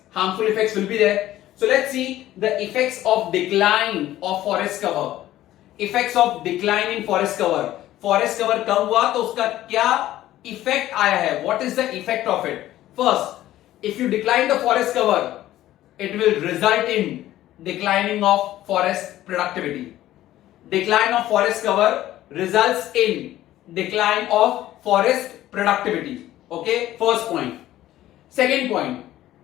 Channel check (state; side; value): quieter; right; 14.2 dB